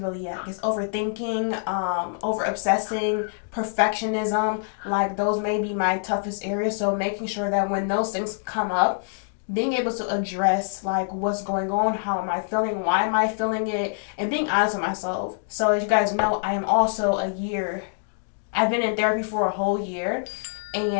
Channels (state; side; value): silent; right; digital silence